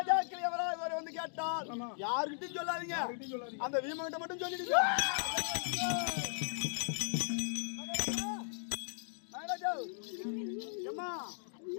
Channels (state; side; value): silent; right; digital silence